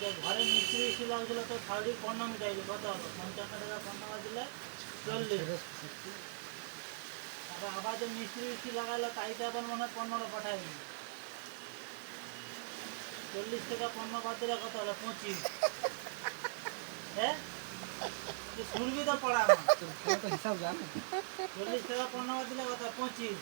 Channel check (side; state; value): left; silent; 51 dB below the other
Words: যে ঘরে মিস্ত্রি ছিল ওগুলো তো শাড়ির 15 মিটাইলি কত হলো 55 টাকা 15 বাদ দিলে 40। তারপর আবার যে মিস্ত্রি লাগাইলো তাইতে আবার মনে হয় 15 পাঠাইনি, 40 টাকা 15 বাদ দিলে কত হলো 25। হ্যাঁ তুই শুনবি তো পড়া আমার, হিসাব জানি। 40 টাকা 15 বাদ দিলে কত 25।